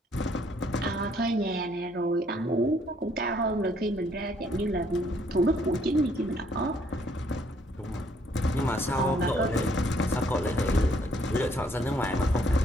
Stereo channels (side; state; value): both; normal; correlation 0.66